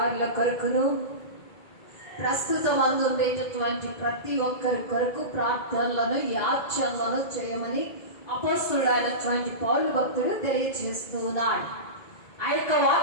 కొరకును, ప్రస్తుతం అందుండేటటువంటి ప్రతి ఒక్కరి కొరకు ప్రార్థనలను, యాచనలను చేయమని అపోస్తలుడైనటువంటి పౌలు భక్తుడు తెలియజేస్తూ ఉన్నాడు. ఆ యొక్క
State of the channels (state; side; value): late; right; 2.0 ms